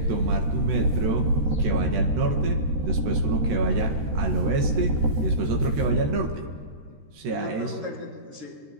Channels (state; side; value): late; left; 13 ms